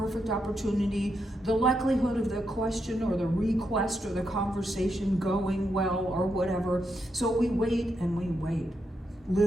opportunity, the likelihood of the question or the request or the conversation going well or whatever. So we wait and we wait.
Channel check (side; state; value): both; normal; correlation 0.82